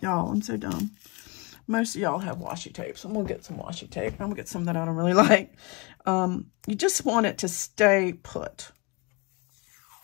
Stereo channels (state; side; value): quieter; right; 29.0 dB